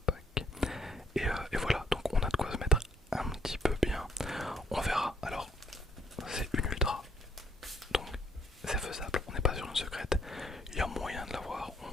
pack. Et voilà, donc on a de quoi se mettre un petit peu bien. On verra, alors c'est une ultra. Donc c'est faisable, on n'est pas sur une secrète, il y a moyen de l'avoir,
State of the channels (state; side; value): normal; both; correlation 0.66